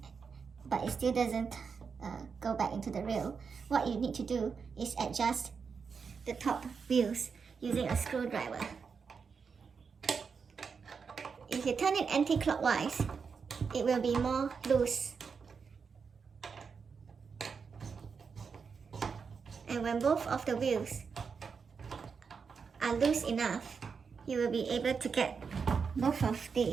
but it still doesn't go back into the rail, what you need to do is adjust the top wheels using a screwdriver. you turn it anti-clockwise, it will be more loose. And when both of the wheels are loose enough, you will be able to get both of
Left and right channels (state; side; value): quieter; left; 5.7 dB